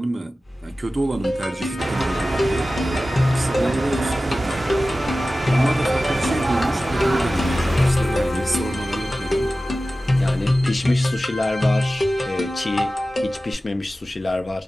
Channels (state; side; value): normal; both; correlation 0.95